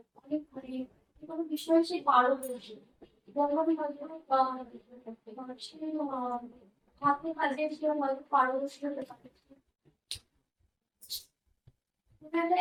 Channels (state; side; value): identical; both; correlation 1.00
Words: অনেক কোনো বিষয়ে সে পারদর্শী হাতে কাজে সে হয়তো পারদর্শী হতে পারে।